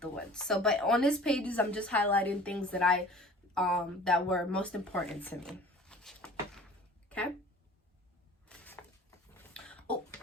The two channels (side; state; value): both; normal; correlation 0.45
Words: So, but on this pages, I'm just highlighting things that that were most important to me. Okay. Oh,